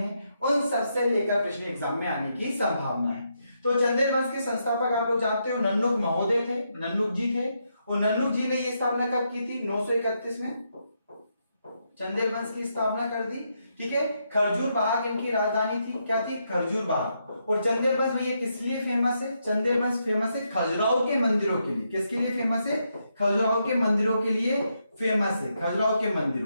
उन सबसे लेकर प्रश्न एग्जाम में आने की संभावना है। तो चंदेल वंश के संस्थापक आप लोग जानते हो नन्नुक महोदय थे, नन्नुक जी थे। और नन्नुक जी ने ये स्थापना कब की थी? 931 में चंदेल वंश की स्थापना कर दी। ठीक है, खरजूर बाग इनकी राजधानी थी। क्या थी? खरजूर बाग। और चंदेल वंश में ये किस लिए फेमस है? चंदेल वंश फेमस है खजुराहो के मंदिरों के लिए। किसके लिए फेमस है? खजुराहो के मंदिरों के लिए फेमस है, खजुराहो के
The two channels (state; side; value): inverted; both; correlation -0.81